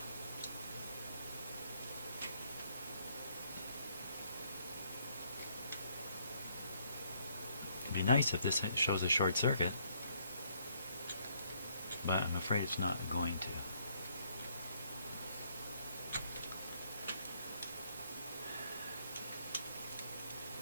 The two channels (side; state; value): both; inverted; correlation -0.70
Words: It'd be nice if this shows a short circuit, but I'm afraid it's not going to.